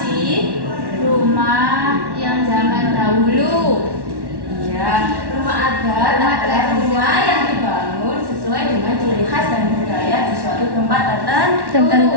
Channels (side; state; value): left; late; 1.1 ms